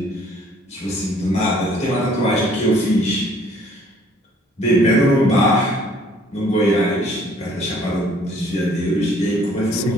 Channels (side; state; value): both; normal; correlation 0.58